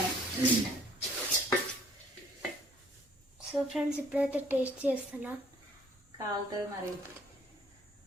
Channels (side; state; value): both; normal; correlation 0.59